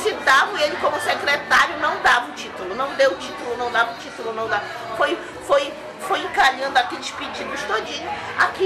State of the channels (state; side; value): identical; both; correlation 1.00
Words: e ele como secretário não dava o título, não deu o título, não dava o título, não dava. Foi encalhando aqueles pedidos todinho.